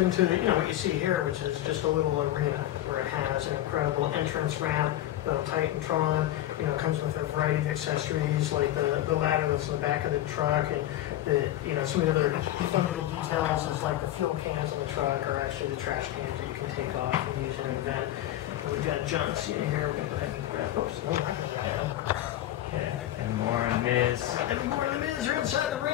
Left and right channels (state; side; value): quieter; right; 13.8 dB